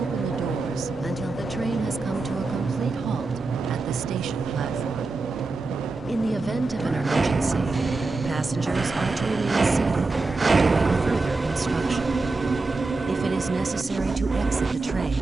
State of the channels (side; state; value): left; quieter; 3.6 dB